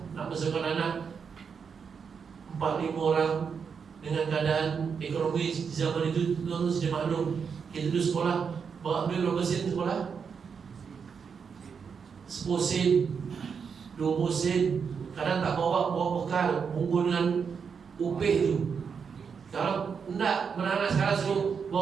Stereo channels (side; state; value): left; quieter; 6.3 dB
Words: nak besarkan anak 4-5 orang. Dengan keadaan ekonomi zaman itu, tuan-tuan sudah maklum. Kita dulu sekolah bawa duit berapa sen sekolah? 10 sen, 20 sen. Kadang tak bawa bekal, bungkus dengan upih tu. Kalau enggak, anak sekarang suruh